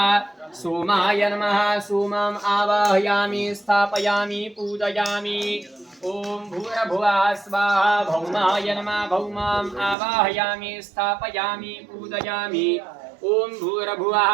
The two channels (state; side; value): drops out; left; at 10.0 s